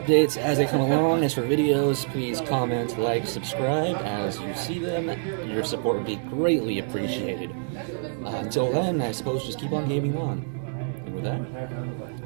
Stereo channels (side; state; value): left; silent; digital silence